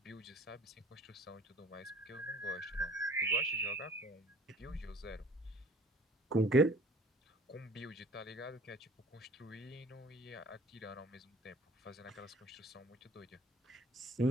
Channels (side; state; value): both; normal; correlation 0.50